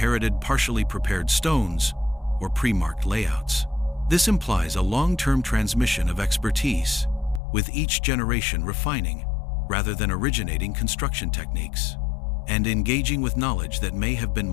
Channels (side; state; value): right; drops out; at 7.4 s